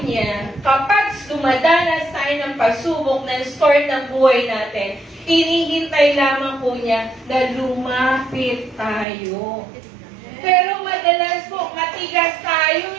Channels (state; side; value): drops out; left; at 9.1 s